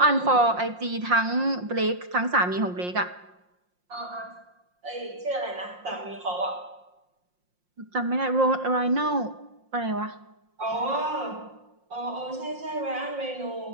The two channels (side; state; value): left; late; 5.6 ms